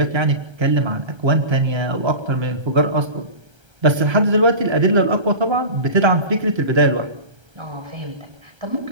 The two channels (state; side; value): late; left; 1.3 ms